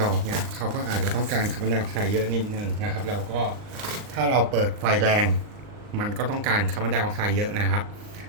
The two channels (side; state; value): left; late; 39 ms